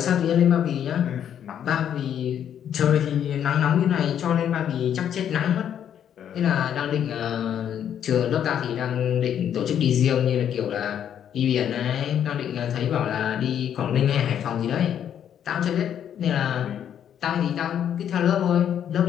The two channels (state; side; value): quieter; right; 9.4 dB